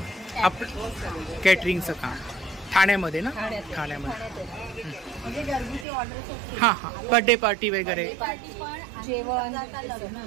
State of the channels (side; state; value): left; drops out; at 5.9 s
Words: आपण कॅटरिंगचं काम ठाण्यामध्ये ना? ठाण्यामध्ये. म्हणजे घरगुती ऑर्डर. हां हां, बर्थडे पार्टी वगैरे. जेवण